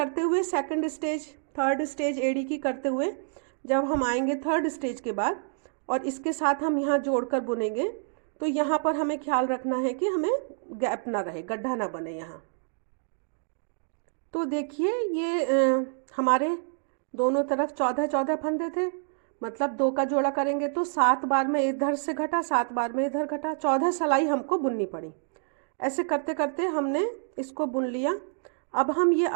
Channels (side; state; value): left; silent; 60 dB below the other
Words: हुए सेकंड स्टेज थर्ड स्टेज एड़ी की करते हुए जब हम आएंगे थर्ड स्टेज के बाद और इसके साथ हम यहाँ जोड़कर बुनेंगे, तो यहाँ पर हमें ख्याल रखना है कि हमें गैप ना रहे, गड्ढा ना बने यहाँ। तो देखिए ये हमारे दोनों तरफ 14-14 फंदे थे, मतलब 2 का जोड़ा करेंगे तो 7 बार में इधर से घटा, 7 बार में इधर घटा, 14 सिलाई हमको बुननी पड़ी। ऐसे करते करते हमने इसको बुन लिया। अब हम ये